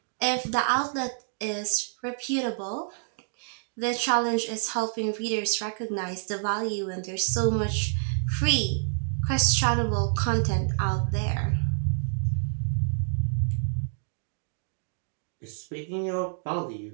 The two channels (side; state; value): left; silent; digital silence